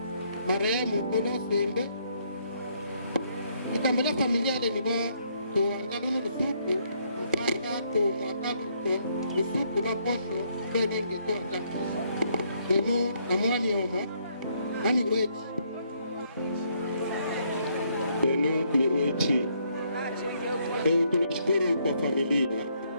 marehemu kono sembe ikambola familia ile nibo to ngano suku mpaka to mwakalu to suku la posho bedenge to ngano dino amwani homo ani kwechi dino ni kwechi. Tunashukuru kwa familia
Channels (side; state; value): both; inverted; correlation -0.71